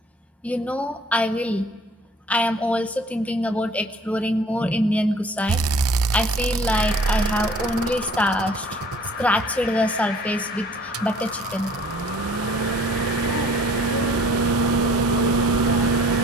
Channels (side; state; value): both; normal; correlation 0.53